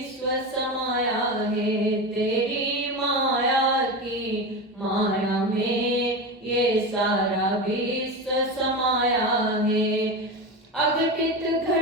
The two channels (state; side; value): normal; both; correlation 0.22